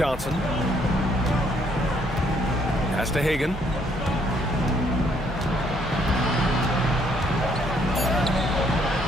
Pass to Hagan.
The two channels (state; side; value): normal; both; correlation 0.68